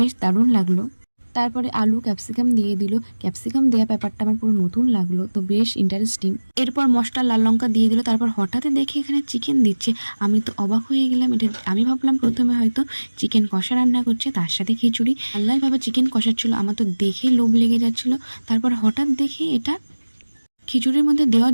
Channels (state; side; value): inverted; both; correlation -1.00